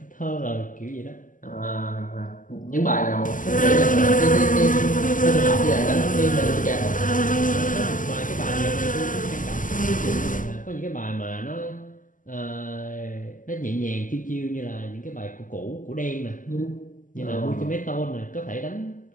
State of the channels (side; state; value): right; late; 0.38 ms